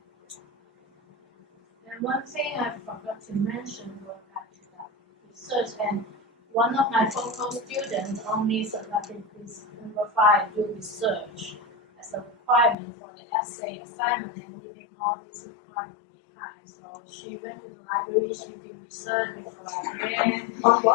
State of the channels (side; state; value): right; drops out; at 12.8 s